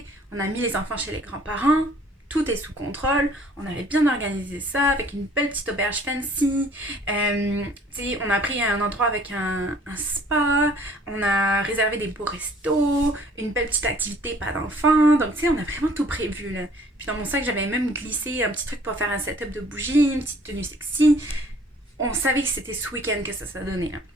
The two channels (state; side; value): normal; both; correlation 0.55